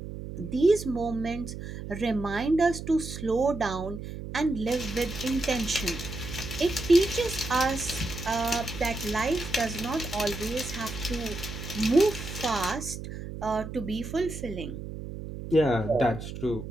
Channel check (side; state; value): right; noise; hum, 9 dB below the sound